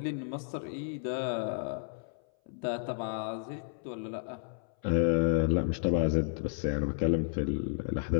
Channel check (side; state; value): right; silent; 56 dB below the other